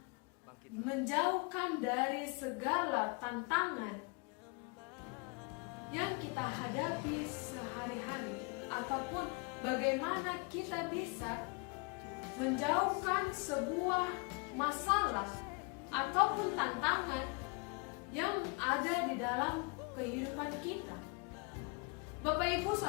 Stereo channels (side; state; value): right; quieter; 30.9 dB